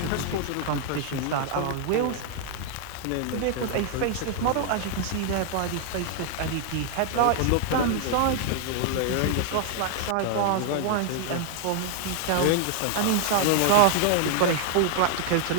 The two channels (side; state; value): both; different; correlation 0.00